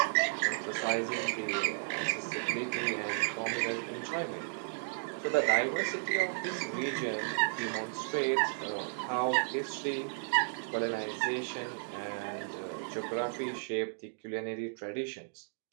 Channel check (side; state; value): left; silent; digital silence